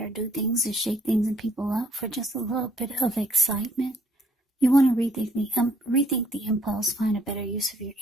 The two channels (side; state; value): both; normal; correlation 0.64